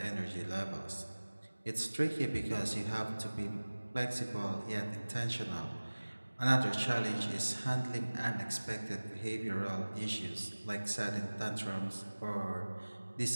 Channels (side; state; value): both; inverted; correlation -1.00